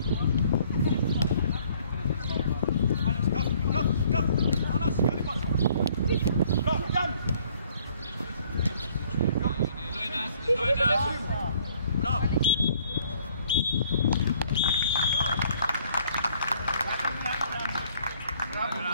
Θανάση, καλή πάσα. Μπράβο, Γιάννη. Μπράβο.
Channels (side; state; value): both; inverted; correlation -0.61